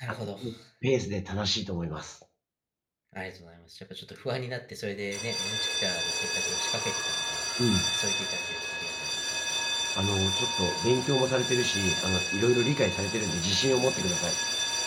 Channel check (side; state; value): both; identical; correlation 1.00